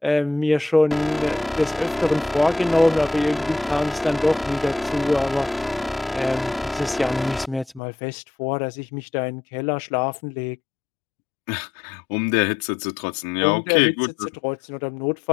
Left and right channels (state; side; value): drops out; right; at 7.8 s